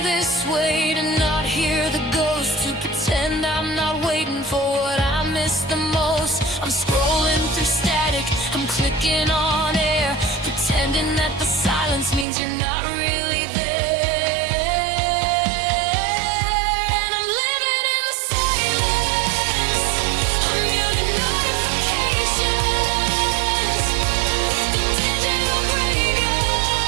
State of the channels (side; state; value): left; drops out; at 12.2 s